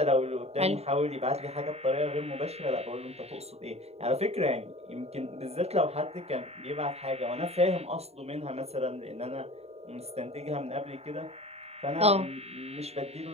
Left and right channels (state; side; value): late; left; 0.30 ms